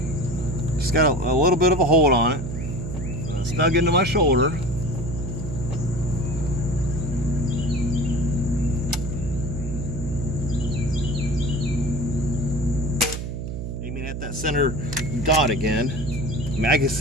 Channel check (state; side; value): noise; right; hum, 5 dB below the sound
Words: Just got a little bit of a hold on it. Snug into my shoulder. Aiming at that center dot again. I mean, I can